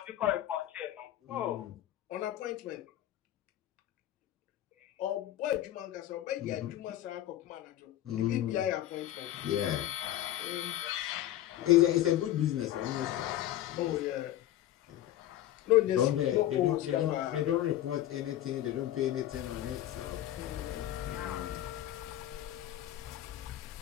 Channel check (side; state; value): right; quieter; 13.1 dB